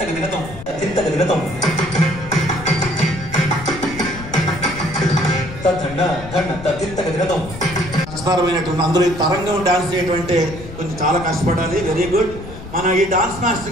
దినతం దండ దండ తిత్తగ దినతం. కష్టతరమైనటువంటి అందులో ఈ తరంగం డాన్స్ చేయటువంటి కొంచెం చాలా కష్టపడాలి. Very good. మన ఈ డాన్స్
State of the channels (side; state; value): left; noise; rumble, 13 dB below the sound